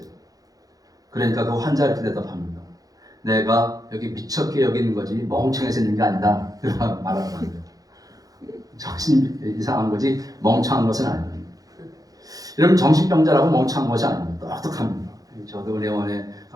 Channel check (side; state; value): left; late; 0.18 ms